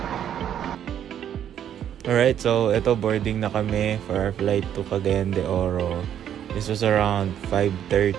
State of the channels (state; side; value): quieter; left; 9.9 dB